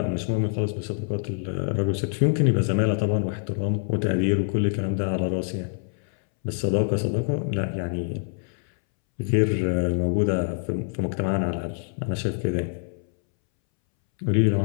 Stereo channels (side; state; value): right; silent; 62 dB below the other